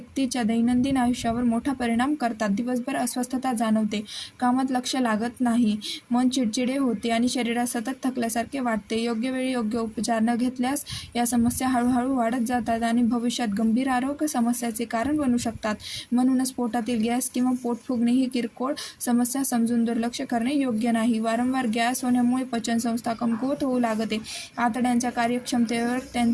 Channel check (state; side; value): identical; both; correlation 1.00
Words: दैनंदिन आयुष्यावर मोठा परिणाम करतात. दिवसभर अस्वस्थता जाणवते, कामात लक्ष लागत नाही, मन चिडचिडे होते आणि शरीरात सतत थकल्यासारखे वाटते. योग्य वेळी योग्य उपचार न घेतल्यास या समस्या हळूहळू वाढत जातात आणि भविष्यात गंभीर आरोग्य समस्याचे कारण बनू शकतात. म्हणूनच पोटातील गॅस किंवा पोट फुगणे ही किरकोळ समस्या समजून दुर्लक्ष करणे योग्य नाही. वारंवार गॅस होण्यामुळे पचनसंस्था कमकुवत होऊ लागते, आतड्यांच्या कार्यक्षमतेवर